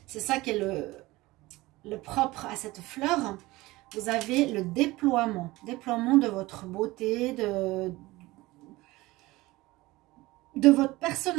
C'est ça qui est le propre à cette fleur. Vous avez le déploiement de votre beauté, de votre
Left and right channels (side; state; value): left; quieter; 19.9 dB